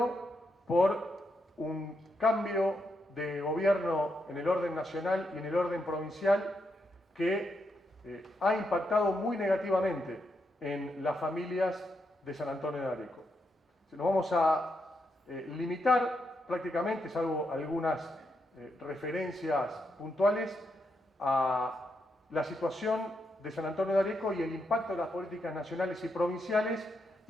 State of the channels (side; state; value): both; normal; correlation 0.82